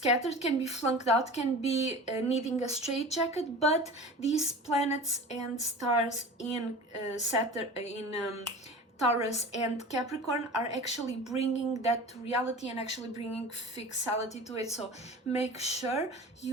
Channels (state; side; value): normal; both; correlation 0.37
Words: can be flunked out, can be needing a straitjacket, but these planets and stars in Saturn, in Taurus and Capricorn are actually bringing that to reality and actually bringing fixality to it. So make sure